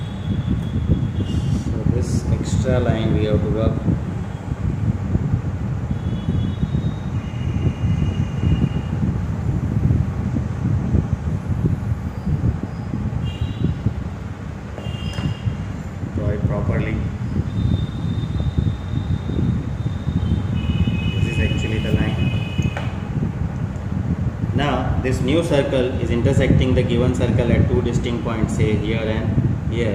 So this extra line we have to rub. Draw it properly. This is actually the line. Now this new circle is intersecting the given circle at two distinct points, say here and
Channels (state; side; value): identical; both; correlation 1.00